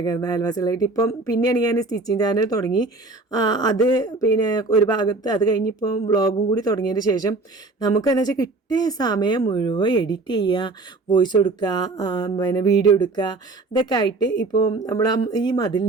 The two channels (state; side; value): quieter; left; 3.4 dB